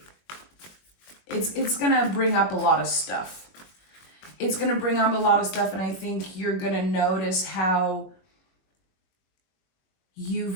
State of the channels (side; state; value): right; late; 21 ms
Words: it's going to bring up a lot of stuff. It's going to bring up a lot of stuff, and I think you're going to notice how